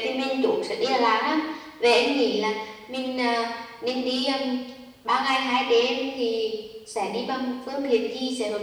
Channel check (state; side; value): identical; both; correlation 1.00